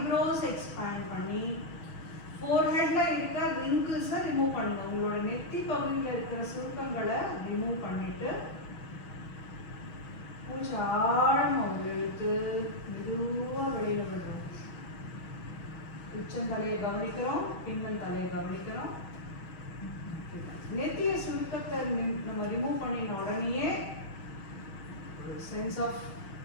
எக்ஸ்பேண்ட் பண்ணி ஃபோர்ஹெட்டில் இருக்க ரிங்கிள்ஸை ரிமூவ் பண்ணுங்க. உங்களோட நெத்தி பகுதியில் இருக்கிற சுருக்கங்களை ரிமூவ் பண்ணிவிட்டு மூச்சு ஆழமாக இழுத்து மெதுவாக வெளியில் விடுறோம். உச்சந்தலையை கவனிக்கிறோம், பின்னல் தலையை கவனிக்கிறோம். நெத்திய சுருக்கத்தை நம்ம ரிமூவ் பண்ணின உடனேயே சென்ஸ் ஆஃப்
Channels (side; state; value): right; late; 6.3 ms